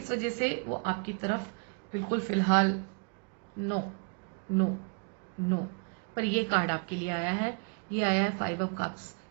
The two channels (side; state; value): left; quieter; 36.7 dB